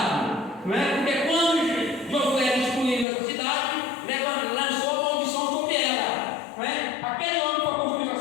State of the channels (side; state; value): right; drops out; at 3.1 s